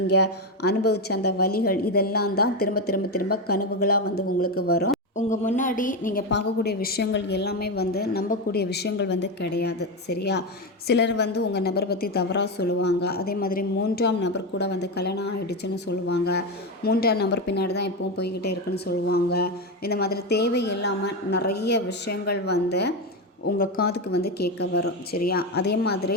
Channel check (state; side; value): normal; both; correlation 0.13